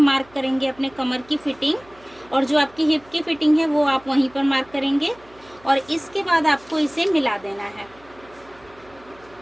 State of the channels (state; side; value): noise; right; hum, 27 dB below the sound